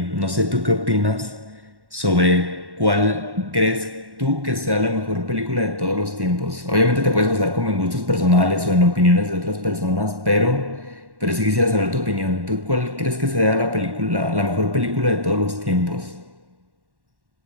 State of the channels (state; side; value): late; left; 1.1 ms